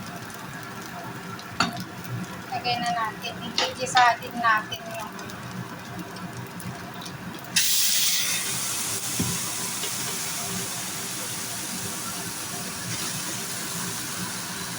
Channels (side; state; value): both; identical; correlation 1.00